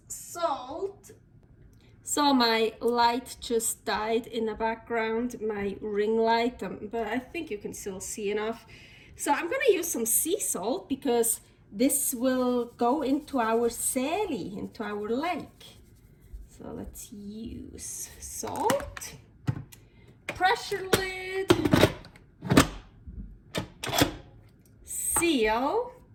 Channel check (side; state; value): both; identical; correlation 1.00